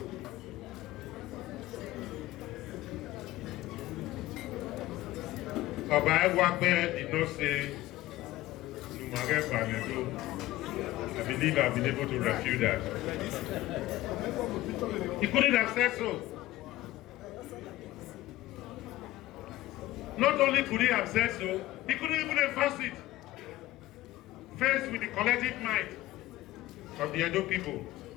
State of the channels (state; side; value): quieter; right; 16.5 dB